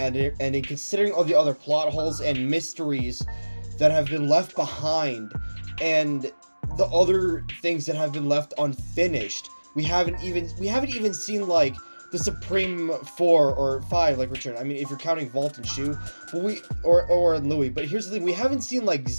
considering all the other plot holes and mysteries that have been left behind, and the other things that have been left unfinished. We haven't even seen like the Supreme 4 or 5 like return. I mean, if you're counting Vault and Shu, but or Louis. But here's the thing: we haven't seen like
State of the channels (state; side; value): inverted; both; correlation -1.00